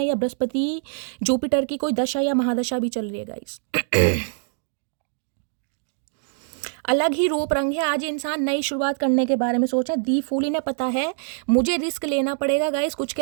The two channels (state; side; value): silent; left; digital silence